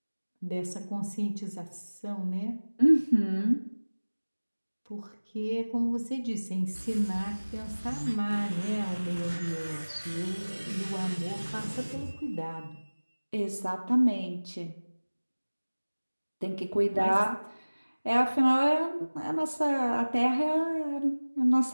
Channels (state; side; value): inverted; both; correlation -1.00